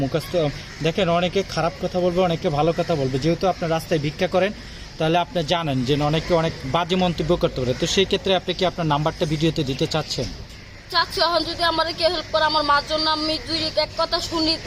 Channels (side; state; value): both; identical; correlation 1.00